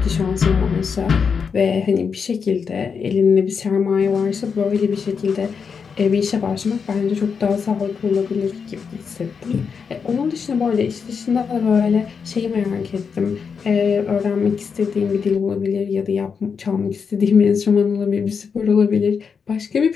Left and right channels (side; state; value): right; quieter; 6.0 dB